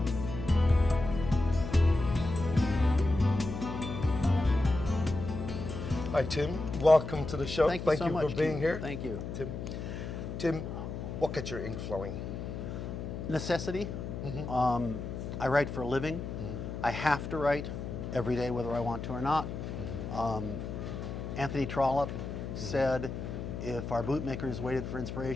Hi Tim, welcome to the show. Thank you so much for being here. Thank you. Tim, what gets your ink flowing? Necessity. I write for a living. I have to write every day whether I want to or not. Anthony Trollope said, if our bootmakers waited for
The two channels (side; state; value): left; noise; hum, 6 dB below the sound